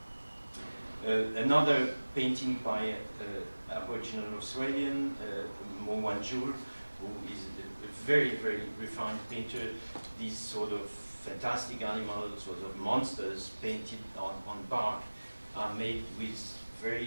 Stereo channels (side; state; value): both; inverted; correlation -1.00